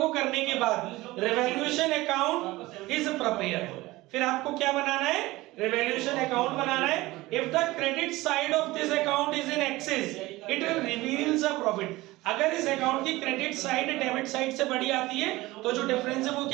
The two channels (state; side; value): quieter; left; 19.4 dB